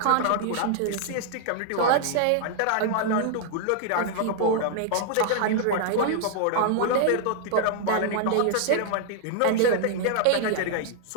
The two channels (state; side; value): different; both; correlation -0.01